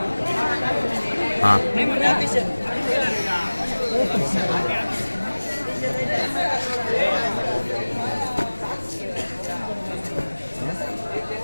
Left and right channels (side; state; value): both; inverted; correlation -1.00